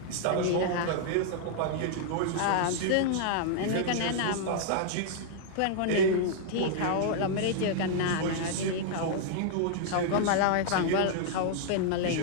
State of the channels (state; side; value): different; both; correlation -0.01